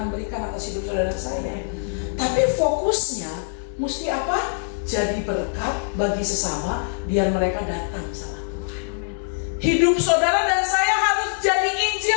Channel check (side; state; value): right; silent; digital silence